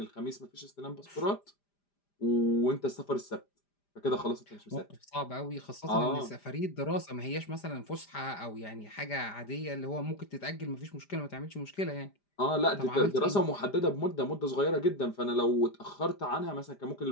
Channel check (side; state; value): right; late; 5.0 ms